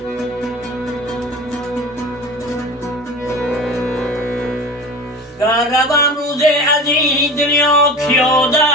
گر روم روز از این دنیا که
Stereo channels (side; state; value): both; normal; correlation 0.33